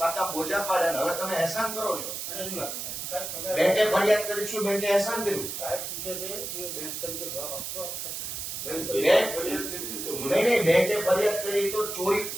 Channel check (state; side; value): noise; right; hiss, 5 dB below the sound